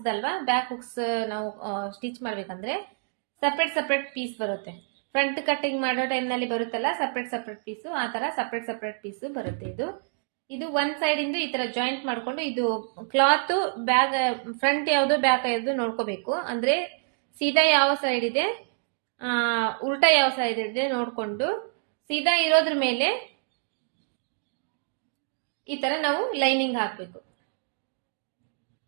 ದಲ್ವಾ, ಬ್ಯಾಕ್ ಹುಕ್ಸ್ ನಾವು ಸ್ಟಿಚ್ ಮಾಡ್ಬೇಕಂದ್ರೆ ಸಪ್ರೇಟ್ ಪೀಸ್ ಬರುತ್ತೆ. ಫ್ರಂಟ್ ಕಟಿಂಗ್ ಮಾಡೋ ಟೈಮ್ ನಲ್ಲಿ ಬರುತ್ತಲ್ಲ ಸಪ್ರೇಟ್ ಪೀಸು, ಆ ತರ ಸಪ್ರೇಟ್ ಪೀಸು ಬರುತ್ತೆ. ಇದು ಒಂದ್ ಸೈಡ್ ಇಂದ ಈ ತರ ಜಾಯಿಂಟ್ ಮಾಡ್ಕೊಂಡು ಇದು ಕ್ಲಾತ್ ಬ್ಯಾಗ್ ಫ್ರಂಟ್ ಯಾವ್ದು ಬ್ಯಾಕ್ ಯಾವ್ದು ನೋಡ್ಕೋಬೇಕು. ಅಂದ್ರೆ ಸೀದಾ ಯಾವ ಸೈಡ್ ಇದೆ, ಉಲ್ಟಾ ಯಾವ ಸೈಡ್ ಇದೆ ನೋಡ್ಕೊಂಡು ಸೀದಾ ಇರೋದ್ರ ಮೇಲೆ ಈ ತರ ನಾವು ಲೈನಿಂಗ್ ಹಾಕ್ಬೇಕು.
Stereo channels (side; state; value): left; silent; digital silence